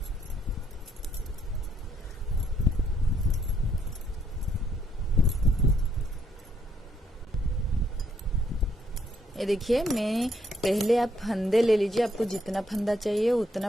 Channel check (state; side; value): normal; both; correlation 0.72